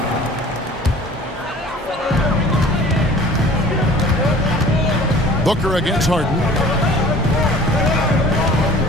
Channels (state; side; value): normal; both; correlation 0.47